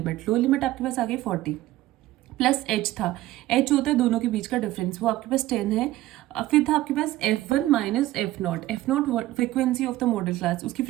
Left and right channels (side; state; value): left; quieter; 16.0 dB